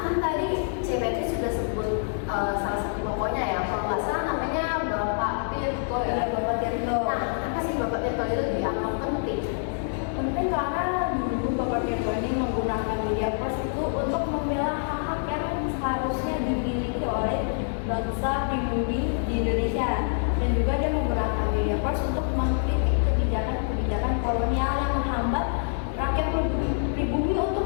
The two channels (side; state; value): right; silent; digital silence